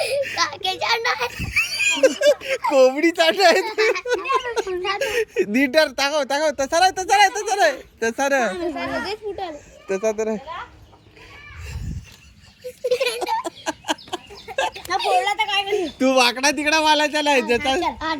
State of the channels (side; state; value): both; identical; correlation 1.00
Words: कोंबडी चाट आहे. नीटर टाकाव तसा नाही तसा तर तू वाकडा तिकडा वालायचा नाही.